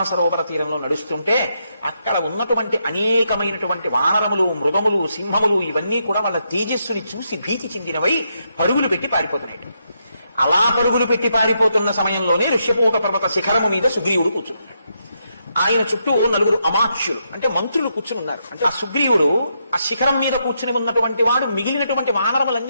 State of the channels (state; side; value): inverted; both; correlation -0.80